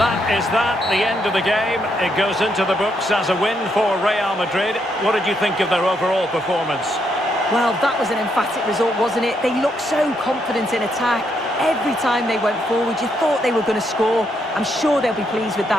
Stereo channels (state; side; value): normal; both; correlation 0.77